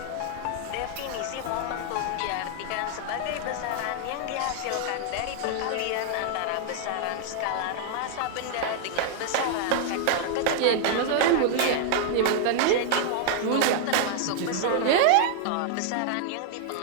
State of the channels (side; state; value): both; different; correlation 0.00